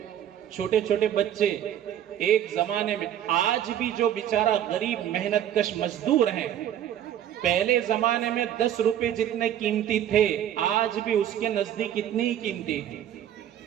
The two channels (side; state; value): left; quieter; 10.8 dB